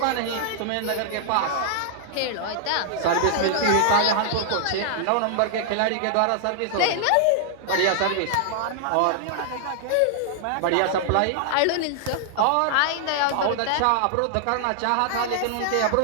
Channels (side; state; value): both; different; correlation -0.01